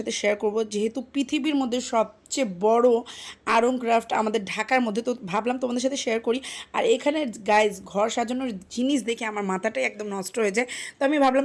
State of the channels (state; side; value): identical; both; correlation 1.00